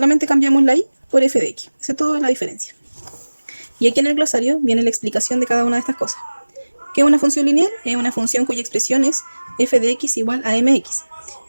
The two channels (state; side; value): inverted; both; correlation -1.00